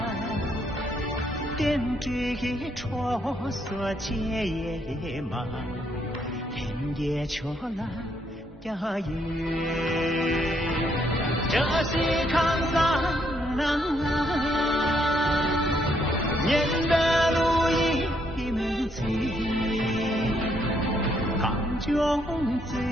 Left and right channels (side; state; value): both; normal; correlation 0.73